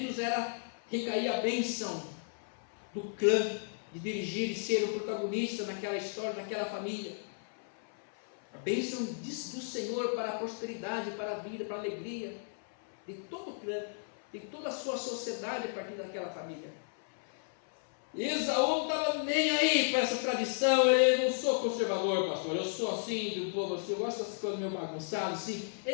recaía a bênção do clã, de dirigir e ser o protagonista naquela história, naquela família. A bênção do Senhor para a prosperidade, para a vida, para a alegria de todo o clã, de toda a sua sociedade a partir daquela família. E Esaú não estava nem aí para essa tradição. Eu não sou conservador, pastor, eu sou assim do povo, eu gosto dessas coisas meio bagunçadas assim.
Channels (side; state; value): right; silent; 55 dB below the other